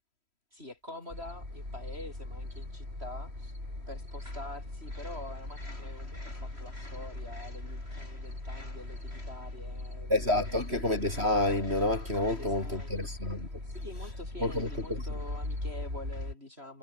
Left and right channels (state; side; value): late; left; 3.1 ms